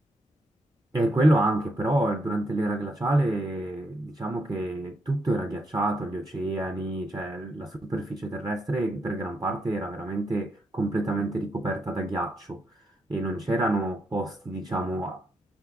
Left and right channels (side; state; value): both; normal; correlation 0.80